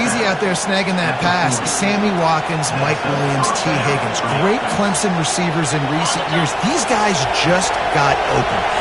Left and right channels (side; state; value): both; identical; correlation 1.00